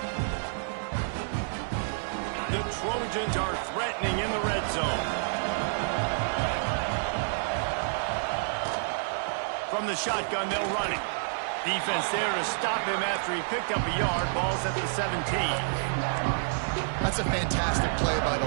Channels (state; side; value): silent; left; 57 dB below the other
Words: The Trojans are threatening in the red zone. From the shotgun, they'll run it. Defense there to stop him after he picked up a yard. Ball's at the 17. That's a fantastic play by